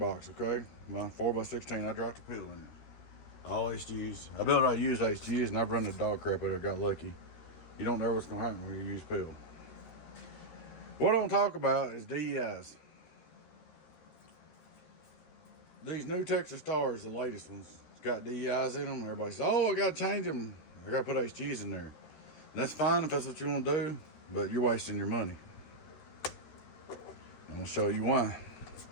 okay? My 4x16, I dropped a peel in it. All HGs. I used HGs and I've run the dog crap out of it, got lucky. You don't know what's gonna happen when you use peel. What I want to talk about is DEIs. These new Texas Stars, the latest ones, it's got DEIs in them. Everybody says, oh, I gotta change them. I gotta put HGs in there. And that's fine if that's what you want to do, but you're wasting your money. I'm gonna show you why.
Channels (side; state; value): right; late; 13 ms